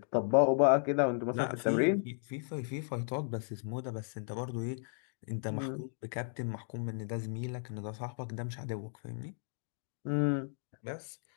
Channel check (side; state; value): right; silent; digital silence